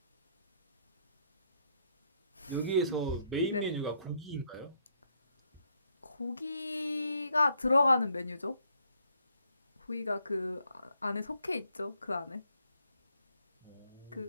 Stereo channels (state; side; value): inverted; both; correlation -0.71